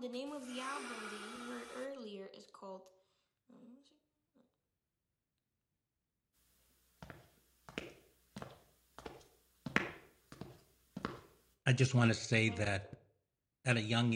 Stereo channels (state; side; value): identical; both; correlation 1.00